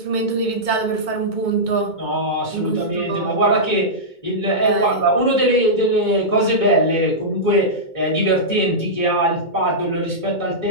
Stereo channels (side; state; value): right; late; 2.2 ms